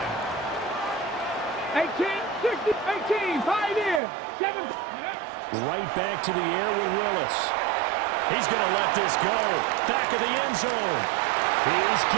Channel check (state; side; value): drops out; left; at 4.0 s